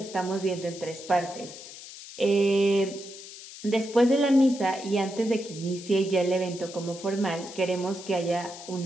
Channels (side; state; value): left; noise; hiss, 14 dB below the sound